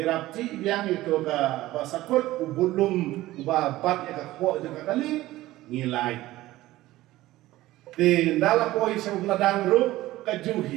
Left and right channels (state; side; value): quieter; left; 16.7 dB